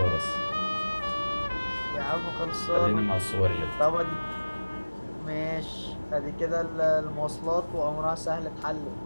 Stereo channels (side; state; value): both; inverted; correlation -1.00